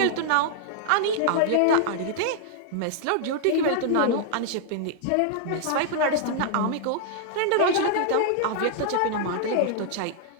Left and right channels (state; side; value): different; both; correlation 0.00